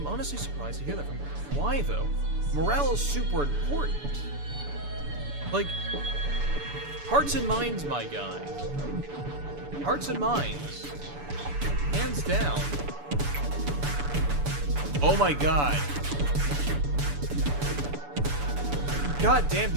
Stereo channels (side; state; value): left; late; 6.9 ms